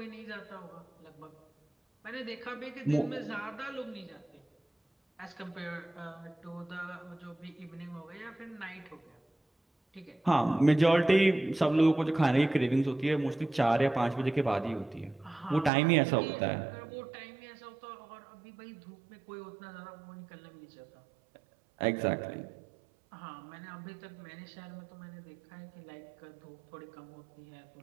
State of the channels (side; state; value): left; drops out; at 15.7 s